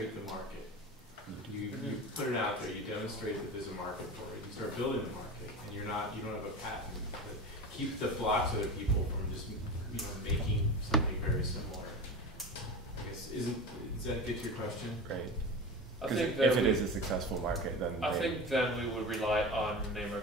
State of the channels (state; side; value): normal; both; correlation 0.28